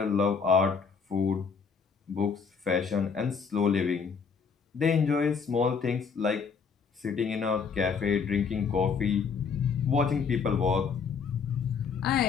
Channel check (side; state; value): right; quieter; 5.8 dB